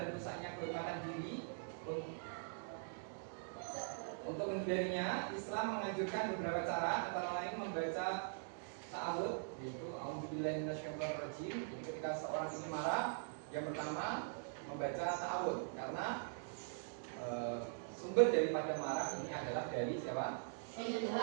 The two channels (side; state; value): left; silent; digital silence